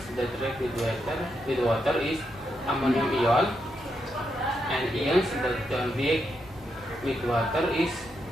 that react with water is ammonium ion, and ions that don't react with water is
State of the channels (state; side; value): normal; both; correlation 0.82